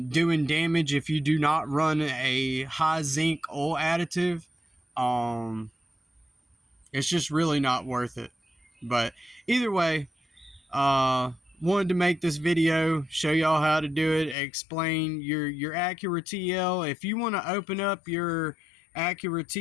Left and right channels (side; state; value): right; drops out; at 14.4 s